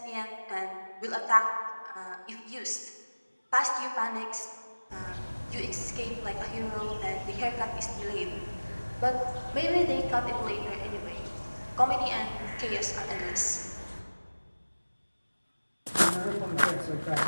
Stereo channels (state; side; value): inverted; both; correlation -1.00